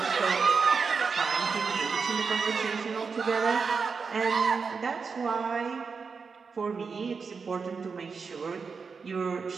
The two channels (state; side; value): quieter; left; 5.2 dB